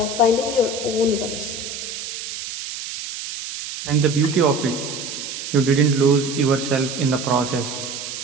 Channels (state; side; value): noise; right; hiss, 8 dB below the sound